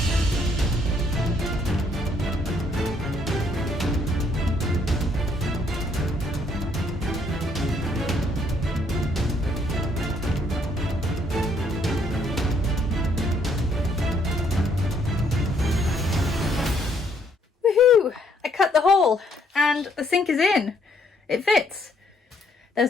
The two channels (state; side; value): normal; both; correlation 0.68